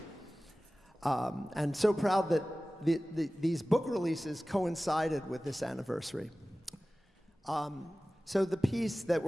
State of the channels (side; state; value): both; normal; correlation 0.97